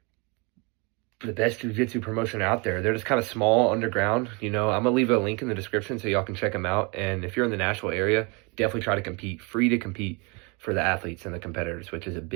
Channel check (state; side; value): quieter; left; 30.2 dB